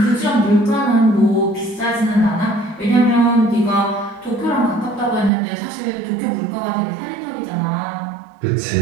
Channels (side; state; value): left; drops out; at 5.3 s